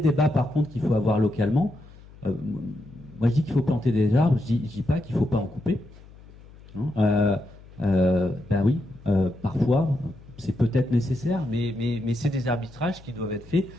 par contre qu'il faut avoir localement. Moi, je dis qu'il faut planter des arbres, je dis pas qu'il faut pas en couper. Ben oui, parfois, c'est peut-être nécessaire, mais c'est des arbitrages qui doivent être faits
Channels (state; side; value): noise; left; hum, 21 dB below the sound